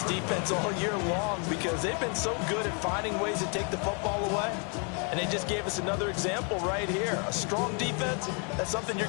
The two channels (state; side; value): quieter; right; 37.9 dB